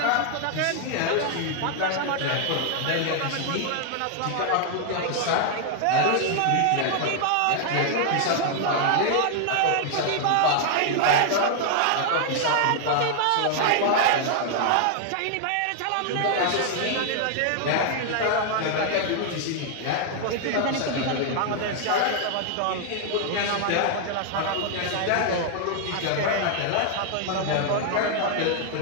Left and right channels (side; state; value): both; different; correlation 0.00